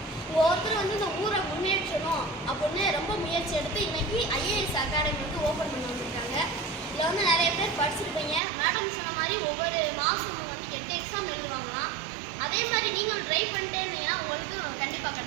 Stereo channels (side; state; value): left; drops out; at 8.4 s